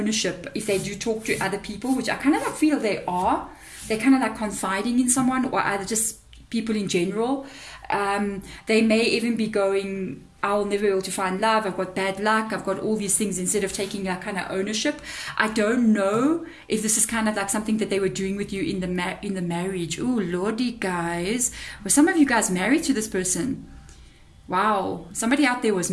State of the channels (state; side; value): identical; both; correlation 1.00